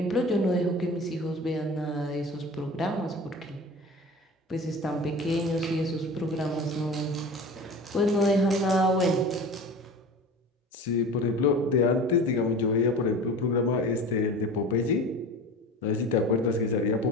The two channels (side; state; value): both; normal; correlation 0.36